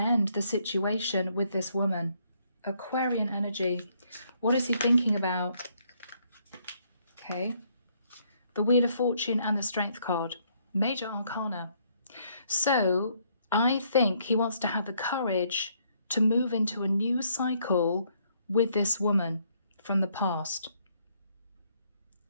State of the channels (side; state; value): both; inverted; correlation -0.70